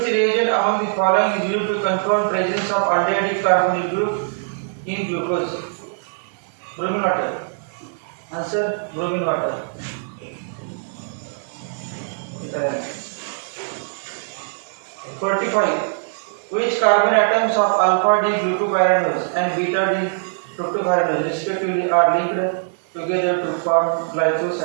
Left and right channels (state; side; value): silent; left; digital silence